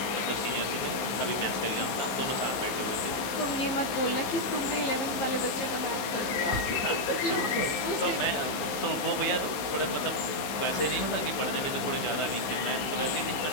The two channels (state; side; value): late; right; 15 ms